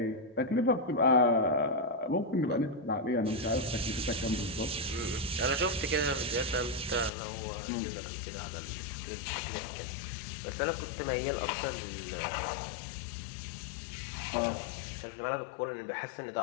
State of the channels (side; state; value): right; drops out; at 7.1 s